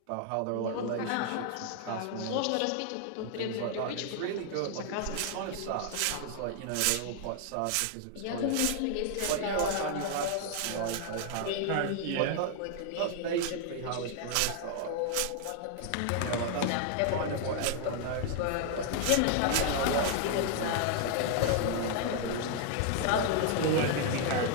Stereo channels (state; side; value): different; both; correlation 0.00